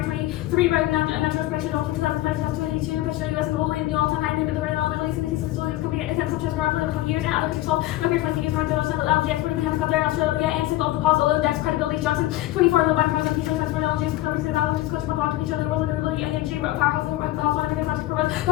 23 right now national expression of 2005 to 2022 push the US globally in the all-time high limit the rate of Middle East and these facilities company attempts such as around 20 years and other countries solve record 20 years around the LNG export in Canada Qatar Australia and signal of the pause although index credibility Johnson 24 low by points of people that's for LNG is covering the value of coach for blocking each other world and really LNG powerhouse over the house one of the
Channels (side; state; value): right; quieter; 16.2 dB